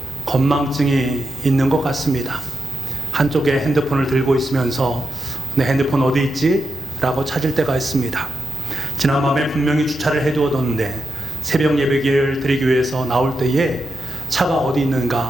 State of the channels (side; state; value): both; normal; correlation 0.87